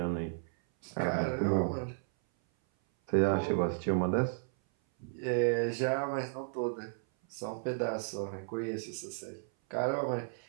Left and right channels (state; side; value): silent; left; 55 dB below the other